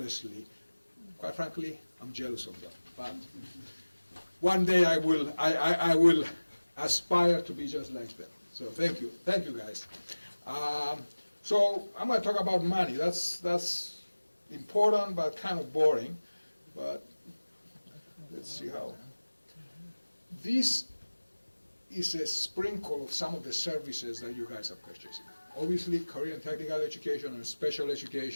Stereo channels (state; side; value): inverted; both; correlation -1.00